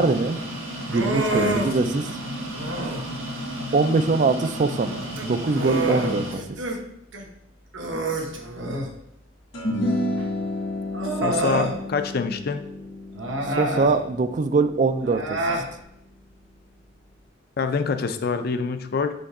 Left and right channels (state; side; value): normal; both; correlation 0.31